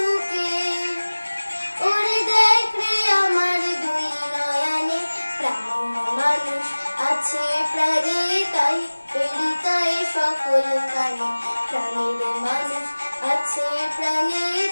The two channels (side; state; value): both; inverted; correlation -1.00